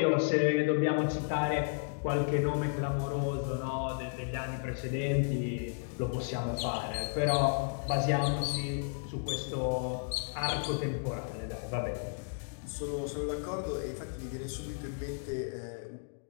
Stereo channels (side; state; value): right; silent; digital silence